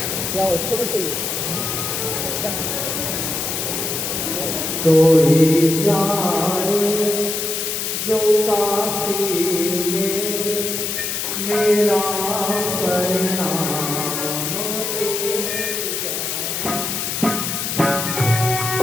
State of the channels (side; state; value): left; noise; hiss, 2 dB below the sound